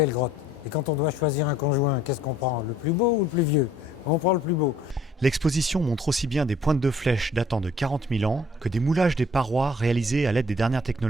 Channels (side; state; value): both; normal; correlation 0.58